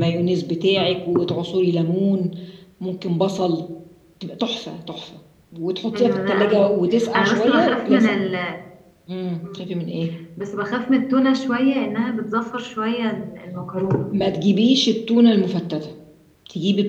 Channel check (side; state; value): both; identical; correlation 1.00